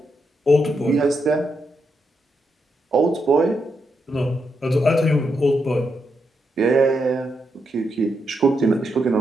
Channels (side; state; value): both; normal; correlation 0.82